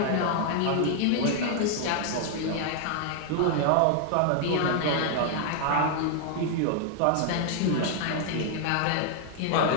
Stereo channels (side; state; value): both; different; correlation 0.00